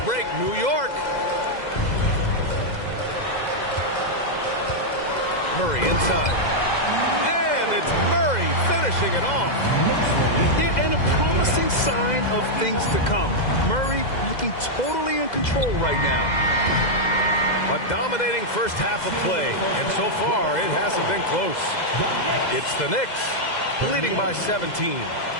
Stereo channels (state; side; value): late; right; 2.0 ms